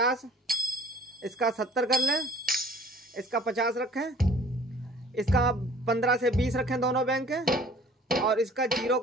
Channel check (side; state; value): both; normal; correlation 0.52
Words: इसका 70 कर लें, इसका 50 रखें, इसका 15 से 20 रखें दोनों बैंक के, और इसका 0